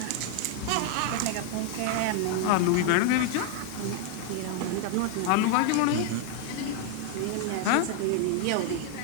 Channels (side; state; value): both; different; correlation 0.00